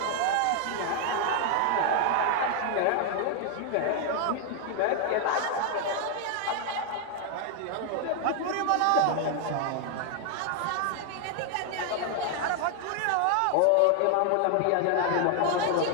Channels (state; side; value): different; both; correlation 0.00